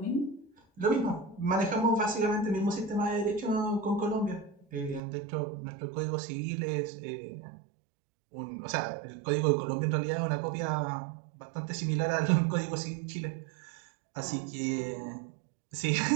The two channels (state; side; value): drops out; left; at 5.0 s